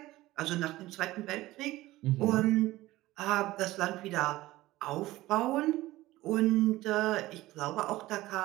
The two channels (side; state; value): left; quieter; 17.4 dB